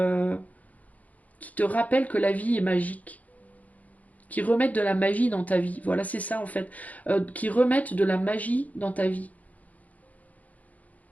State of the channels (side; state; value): right; late; 0.074 ms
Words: rappellent que la vie est magique, qui remettent de la magie dans ta vie. Voilà, c'est ça en fait. Qui remettent de la magie dans ta vie.